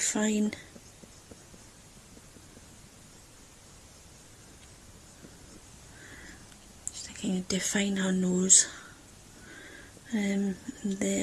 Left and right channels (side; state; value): both; identical; correlation 1.00